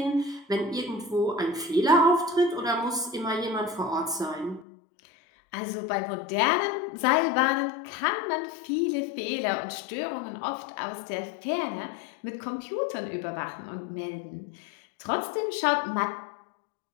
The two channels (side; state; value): right; drops out; at 4.7 s